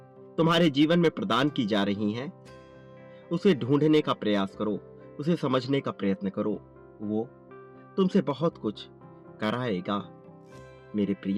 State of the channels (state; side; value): identical; both; correlation 1.00